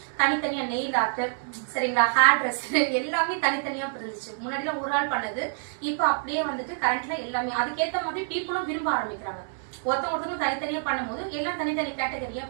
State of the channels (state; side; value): silent; left; digital silence